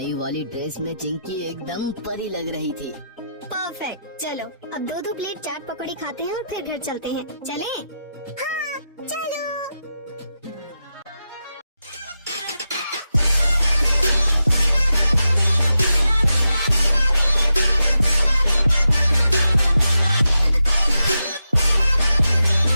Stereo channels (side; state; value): both; inverted; correlation -0.88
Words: वाली ड्रेस में चिंकी एकदम परी लग रही थी। परफेक्ट। चलो अब 2-2 प्लेट चाट पकौड़ी खाते हैं और फिर घर चलते हैं। चलें? हाँ चलो।